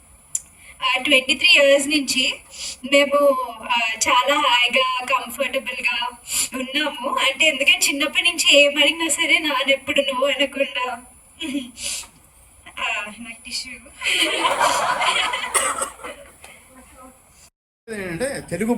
23 years నుంచి మేము చాలా హాయిగా కంఫర్టబుల్గా ఉన్నాము. అంటే ఎందుకంటే చిన్నప్పటి నుంచి ఏమడిగినా సరే నాన్న ఎప్పుడు నువ్వు అనకుండా నాకు టిష్యూ. ఏంటంటే తెలుగు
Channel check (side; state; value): both; identical; correlation 1.00